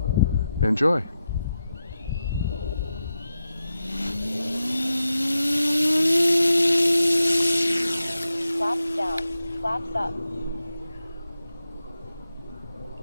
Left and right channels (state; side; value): inverted; both; correlation -0.89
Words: enjoy. Flaps down, flaps up.